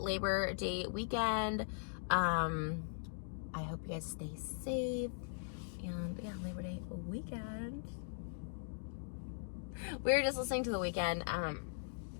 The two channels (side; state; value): right; silent; digital silence